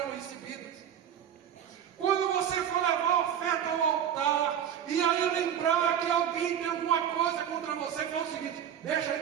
recebidas. Quando você for levar a oferta ao altar, e aí lembrar que alguém tem alguma coisa contra você, fala o seguinte: deixa aí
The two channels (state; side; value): quieter; left; 9.3 dB